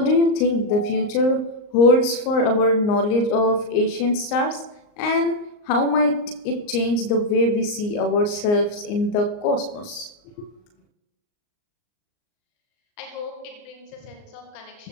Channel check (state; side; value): late; right; 38 ms